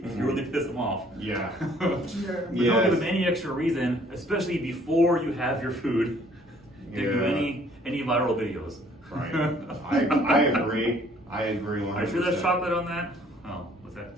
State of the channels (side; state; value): both; normal; correlation 0.59